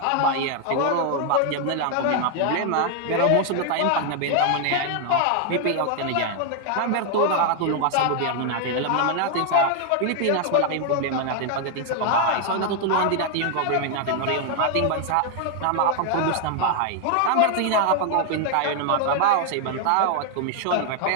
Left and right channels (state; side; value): different; both; correlation 0.00